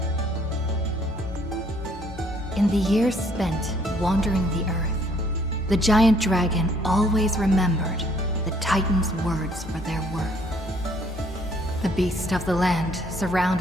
the years spent wandering the earth, the giant dragon always remembered the Titan's words for their worth. The beast of the land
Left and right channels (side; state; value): both; normal; correlation 0.63